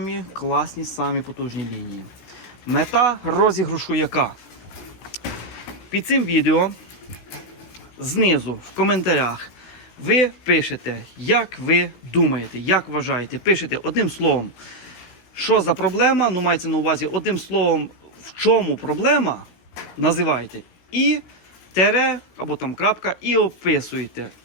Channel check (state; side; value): late; right; 16 ms